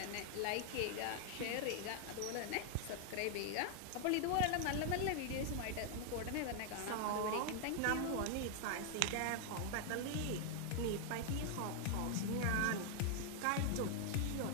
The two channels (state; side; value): different; both; correlation 0.00